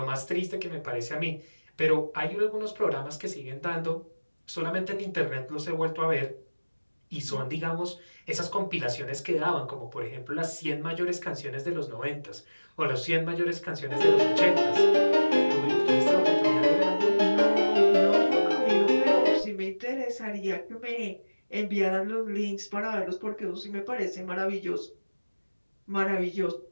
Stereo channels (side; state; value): both; inverted; correlation -1.00